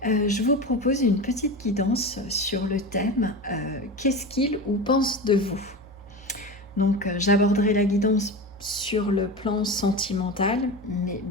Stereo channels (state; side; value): normal; both; correlation 0.26